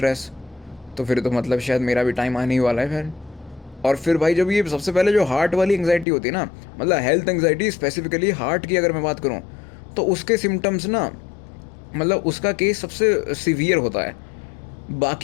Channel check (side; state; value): right; drops out; at 6.1 s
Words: तो फिर तो मतलब शायद मेरा भी टाइम आने ही वाला है फिर। और फिर भाई जब ये सबसे पहले जो हार्ट वाली एंग्जाइटी होती है ना, मतलब हेल्थ एंग्जाइटी स्पेसिफिकली हार्ट की अगर मैं बात करूँ, तो उसके सिम्टम्स ना, मतलब उसका केस सबसे सीवियर होता है